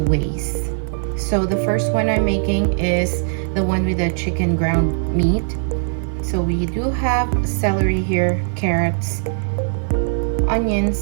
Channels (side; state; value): left; silent; 60 dB below the other